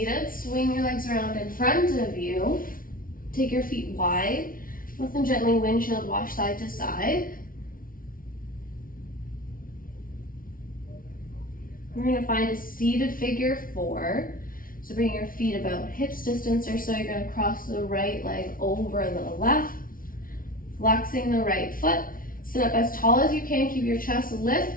Swing your legs around in front of you. Take your feet wide. Lift them gently, windshield wash side to side. We're going to find a seated figure 4. So bring your feet about hips distance or so. You're going to cross the right leg over the left. Flexing the right foot. Sit up as tall as you can. Keep your chest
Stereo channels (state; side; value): late; right; 0.41 ms